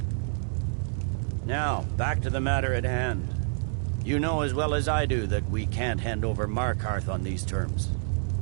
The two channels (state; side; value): silent; left; digital silence